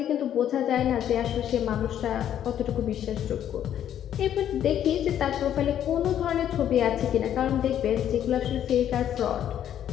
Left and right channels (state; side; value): quieter; right; 10.4 dB